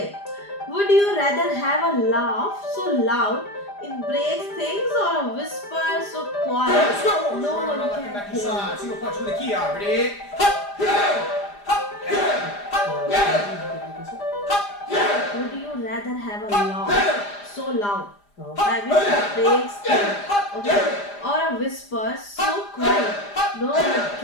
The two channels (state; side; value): late; right; 4.9 ms